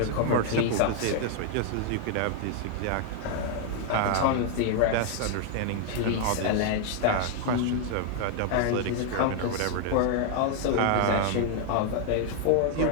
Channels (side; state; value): both; different; correlation 0.00